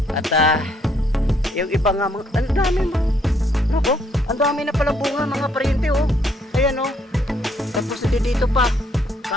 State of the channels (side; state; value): both; normal; correlation 0.70